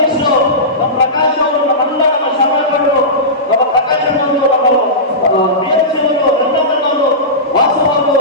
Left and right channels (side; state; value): both; normal; correlation -0.18